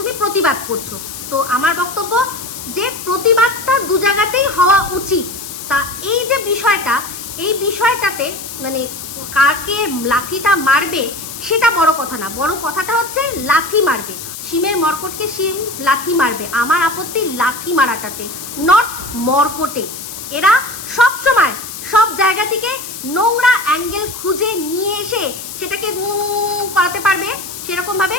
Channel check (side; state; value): left; noise; hiss, 10 dB below the sound